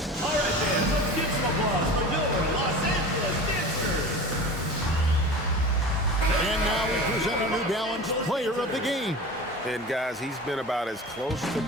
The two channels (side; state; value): both; normal; correlation 0.34